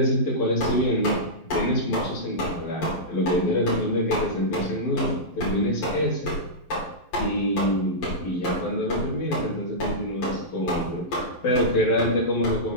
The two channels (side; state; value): right; late; 11 ms